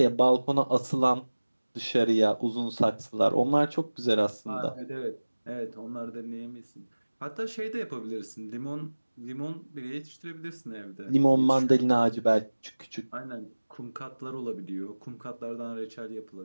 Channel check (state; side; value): inverted; both; correlation -1.00